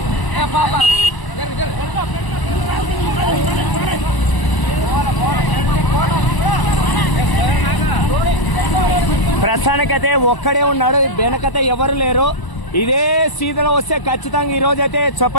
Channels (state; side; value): late; right; 1.0 ms